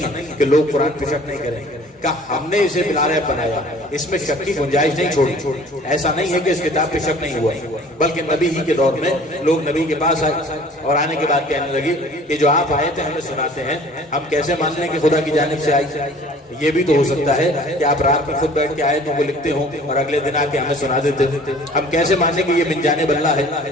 ہے کہ لوگ قرآن پہ شک نہیں کریں گے، کہ ہم نے اسے لاریب بنایا، اس میں شک کی گنجائش نہیں چھوڑی۔ ایسا نہیں ہے کہ اس کتاب پہ شک نہیں ہوا، بلکہ نبی ہی کے دور میں لوگ نبی کے پاس آئے اور آنے کے بعد کہنے لگے کہ جو آپ آئے تھے ہمیں سناتے ہیں، ہم کیسے مان لیں کہ خدا کی جانب سے آئی؟ یہ بھی تو ہو سکتا ہے کہ آپ رات میں خود بیٹھ کے آئے تو وہ لکھتے ہوں اور اگلے دن آ کے ہمیں سنا دیتے ہیں۔ ہم کیسے مانیں کہ یہ من جانب اللہ ہے؟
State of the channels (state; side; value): normal; both; correlation 0.49